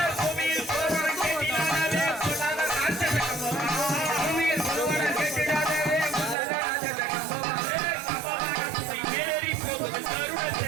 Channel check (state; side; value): drops out; left; at 6.4 s